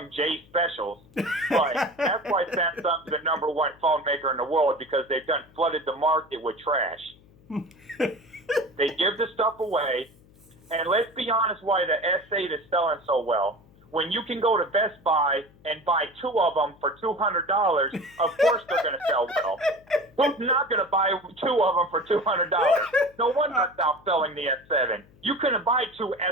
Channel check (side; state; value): left; noise; hum, 27 dB below the sound